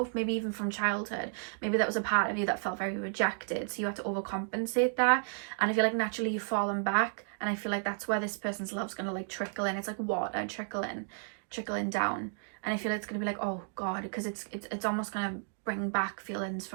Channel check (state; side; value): silent; left; digital silence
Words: maybe even from childhood. Maybe that was a part of you that felt very rejected, so you had to overcompensate that. And I feel like naturally you've fallen back, and I feel like that's where this person's love's gonna like trickle in. It's like water trickling down, and I feel like it's gonna be like, oh God, because it's almost gonna bring back feelings